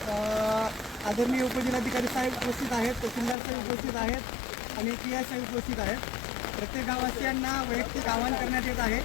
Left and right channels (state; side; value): drops out; right; at 3.4 s